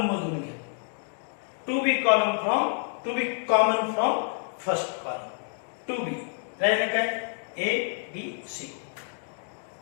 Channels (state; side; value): silent; right; 56 dB below the other